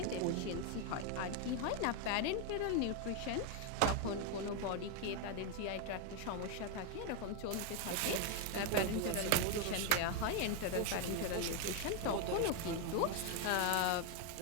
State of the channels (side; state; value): both; different; correlation 0.01